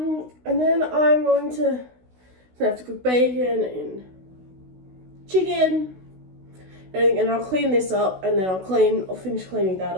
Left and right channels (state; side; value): late; left; 16 ms